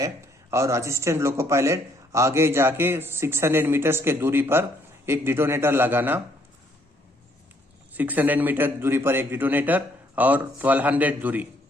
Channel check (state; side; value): normal; both; correlation 0.67